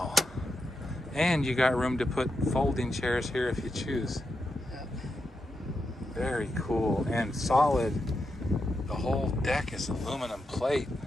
And you got room to put folding chairs here if you choose. Yep. Very cool and solid. The whole deck is aluminum plate.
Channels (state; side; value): normal; both; correlation 0.85